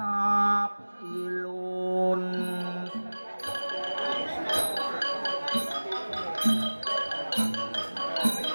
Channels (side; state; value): both; inverted; correlation -1.00